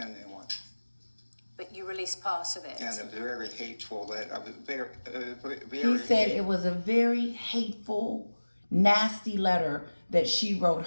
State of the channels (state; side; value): inverted; both; correlation -1.00